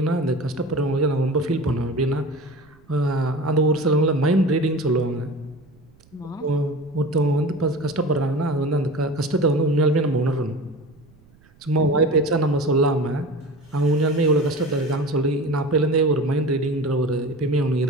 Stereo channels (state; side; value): noise; right; rumble, 29 dB below the sound